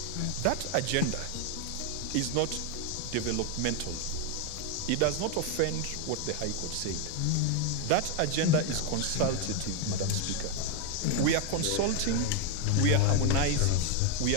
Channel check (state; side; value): different; both; correlation 0.01